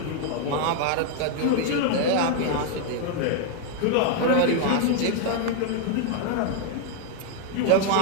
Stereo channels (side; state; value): both; different; correlation 0.00